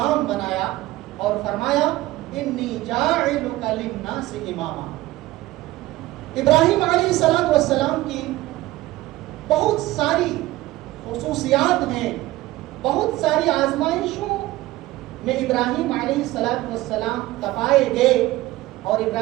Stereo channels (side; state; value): left; quieter; 17.5 dB